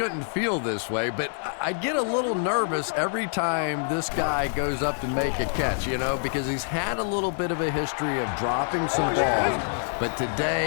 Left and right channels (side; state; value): right; silent; digital silence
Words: feel this way, but I get a little nervous every time this guy goes up to make a catch, you know, because he's had a little bit of a history of dropping some balls, but